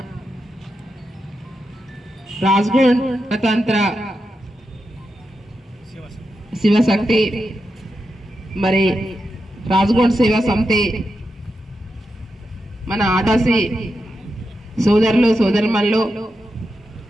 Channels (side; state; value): both; normal; correlation 0.87